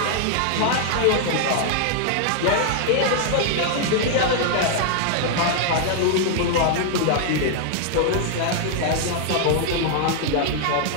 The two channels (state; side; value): different; both; correlation 0.00